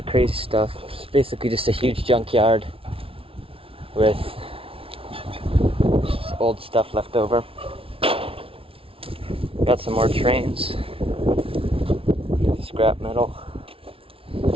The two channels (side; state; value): left; late; 0.26 ms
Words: crazy stuff. It's basically just a huge junkyard with just old stuff left over. Got some more trains, scrap metal.